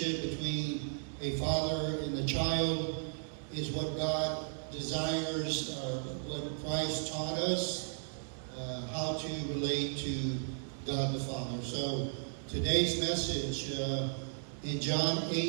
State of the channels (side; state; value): left; silent; digital silence